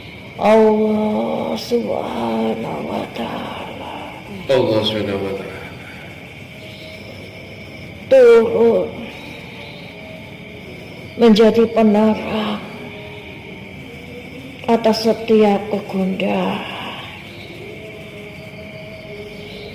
Allah Subhanahu wa Ta'ala Allah Subhanahu wa Ta'ala turun menjadi penerang atas setiap kegundahan,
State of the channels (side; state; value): both; identical; correlation 1.00